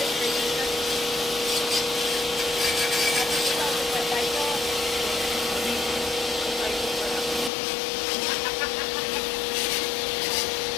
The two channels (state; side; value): drops out; right; at 7.5 s